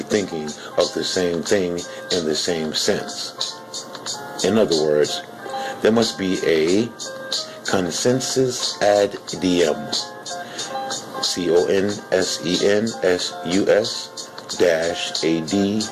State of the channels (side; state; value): both; identical; correlation 1.00